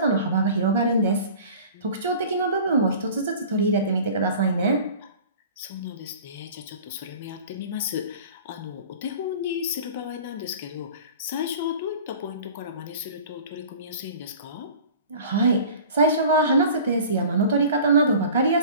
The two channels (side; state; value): both; inverted; correlation -0.42